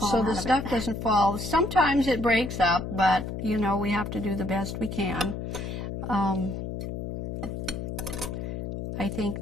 So out the of stuff it. doesn't fall. Sometimes it breaks up, but, you know, we have to do the best we can. I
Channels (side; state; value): left; noise; hum, 5 dB below the sound